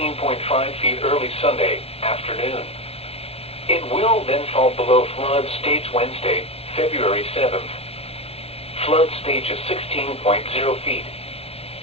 feet early Sunday afternoon. It will then fall below flood stage Wednesday, February 7th. Flood stage is 16.0 feet.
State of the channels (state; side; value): late; right; 0.29 ms